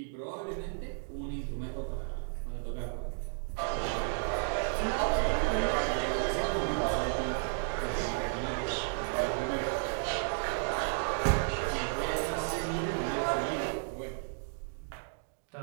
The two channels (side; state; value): left; silent; digital silence